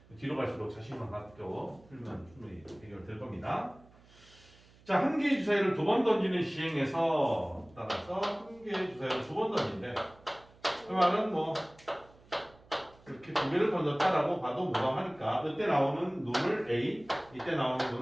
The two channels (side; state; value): right; noise; hum, 26 dB below the sound